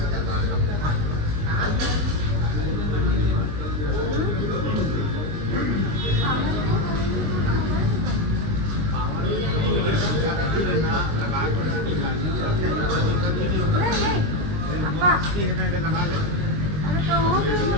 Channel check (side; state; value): left; late; 21 ms